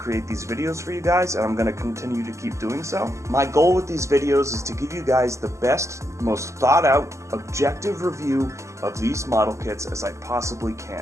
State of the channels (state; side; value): late; left; 0.14 ms